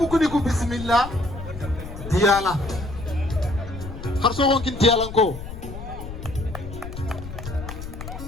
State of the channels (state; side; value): noise; left; rumble, 10 dB below the sound